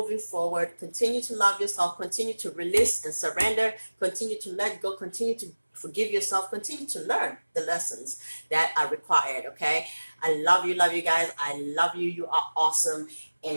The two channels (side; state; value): both; inverted; correlation -1.00